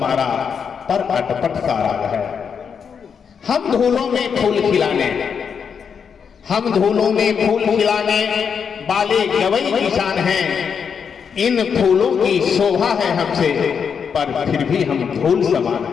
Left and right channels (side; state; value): right; quieter; 6.7 dB